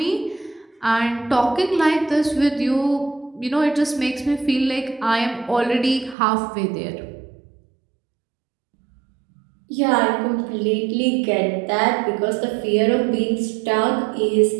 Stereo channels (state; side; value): drops out; left; at 6.2 s